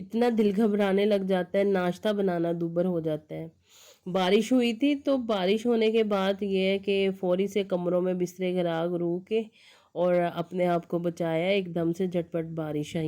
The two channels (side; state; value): both; identical; correlation 1.00